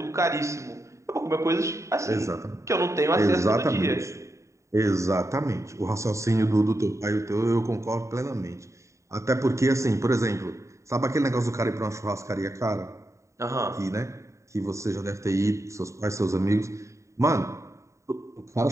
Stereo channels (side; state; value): left; late; 0.14 ms